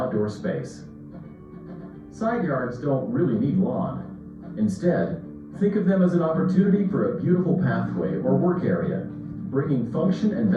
space. Side yards don't really need lawn. Instead, think of them as an opportunity for a beautiful pathway or work area, bringing function and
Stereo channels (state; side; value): identical; both; correlation 1.00